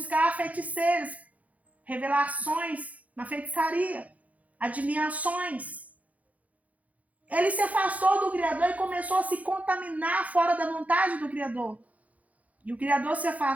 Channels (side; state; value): left; late; 0.071 ms